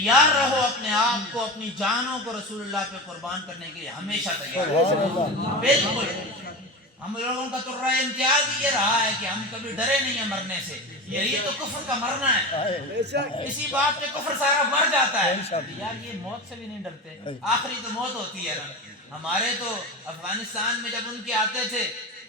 رہو، اپنے آپ کو اپنی جانوں کو رسول اللہ پہ قربان کرنے کے لیے ہمیشہ تیار رہو۔ بالکل ہم لوگوں کا تو رائے امتیاز یہ رہا ہے کہ ہم کبھی ڈرے نہیں ہیں مرنے سے، یہی تو کفر کا مرنا ہے، بے شک، اسی بات پہ کفر سارا مر جاتا ہے۔ یار یہ موت سے بھی نہیں ڈرتے، آخری تو موت ہوتی ہے نا۔ ہمارے تو افغانستان میں جب ان کے آتے تھے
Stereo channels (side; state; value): both; normal; correlation 0.25